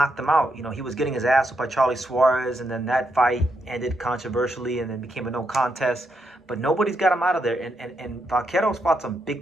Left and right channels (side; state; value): both; normal; correlation 0.80